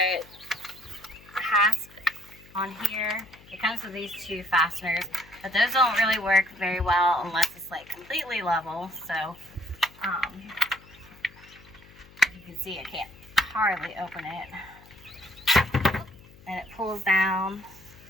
a hasp on here. It comes with these 2 fasteners, but those don't really work very well unless it's like completely level. So as you can see, I can't hardly open it, and it pulls down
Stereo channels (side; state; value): left; noise; hum, 23 dB below the sound